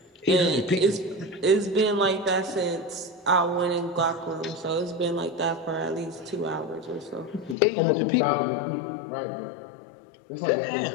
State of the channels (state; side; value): drops out; right; at 7.6 s